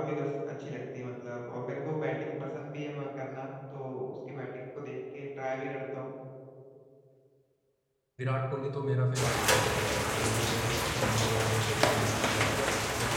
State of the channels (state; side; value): identical; both; correlation 1.00